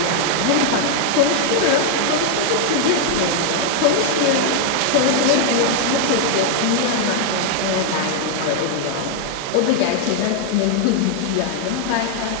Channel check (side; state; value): both; different; correlation 0.00